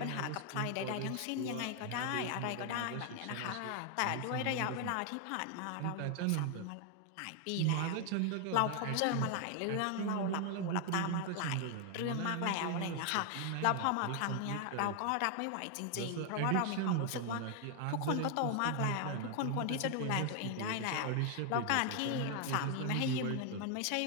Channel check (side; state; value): both; different; correlation 0.00